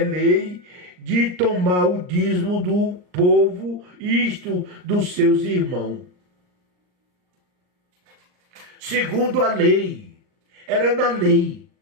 de tomar o dízimo do povo, isto dos seus irmãos. Segundo a lei, era na lei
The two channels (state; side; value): late; left; 39 ms